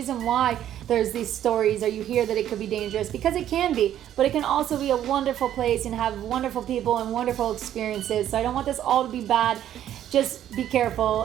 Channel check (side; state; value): left; quieter; 11.3 dB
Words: why there's these stories, or you hear that it could be dangerous, because it can be, but it can also be a wonderful place and have wonderful people and wonderful experiences. So I don't want this all to be bad. Just be